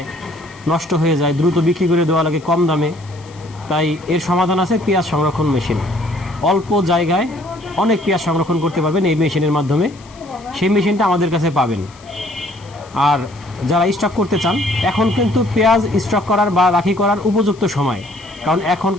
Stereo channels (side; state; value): left; noise; hiss, 25 dB below the sound